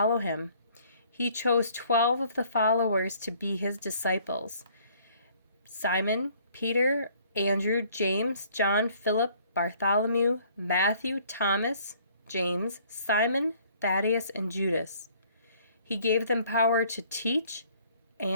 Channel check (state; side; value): inverted; both; correlation -0.59